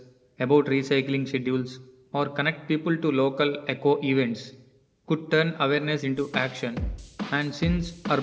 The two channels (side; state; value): both; identical; correlation 1.00